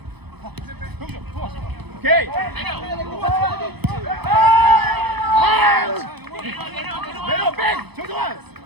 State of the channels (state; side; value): late; left; 0.98 ms